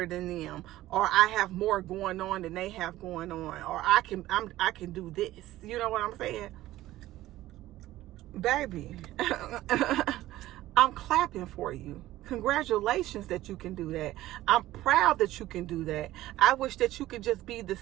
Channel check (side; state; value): left; quieter; 15.6 dB